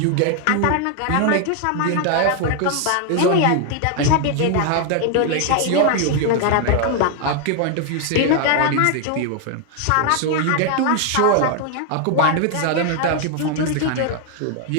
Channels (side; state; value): both; different; correlation 0.00